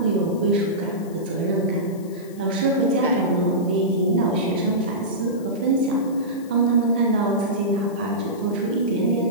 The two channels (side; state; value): left; noise; hiss, 24 dB below the sound